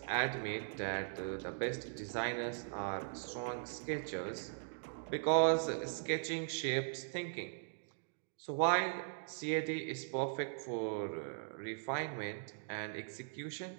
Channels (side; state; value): left; silent; digital silence